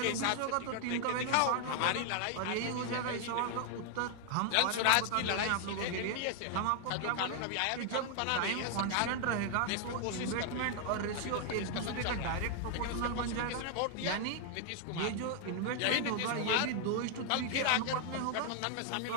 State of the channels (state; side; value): different; both; correlation 0.00